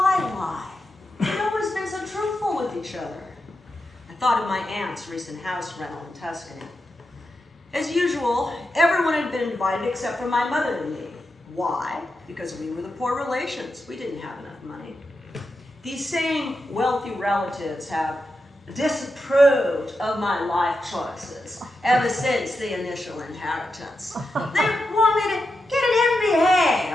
lie? We've always been so truthful with each other. I thought of my aunt's recent house rental in Tuscany. As usual, everyone had been invited except for my mother and me. Why? Because we were the poor relations. We didn't have enough money. These same wealthy relatives have disapproved of my life choices ever since the initial inheritance. They want me to get an MBA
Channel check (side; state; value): both; normal; correlation 0.88